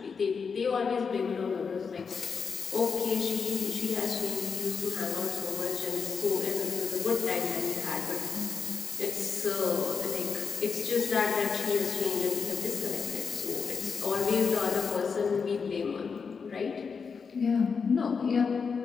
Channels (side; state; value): right; quieter; 5.7 dB